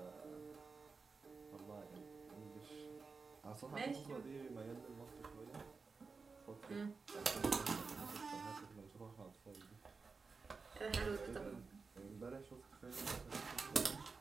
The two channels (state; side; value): quieter; left; 4.6 dB